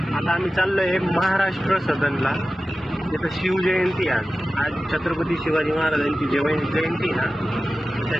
आता आम्ही चाललोय महाराष्ट्र सदनला. तिथं शिवजयंती आज छत्रपती शिवाजी महाराजांची जयंती ना,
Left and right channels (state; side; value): normal; both; correlation 0.94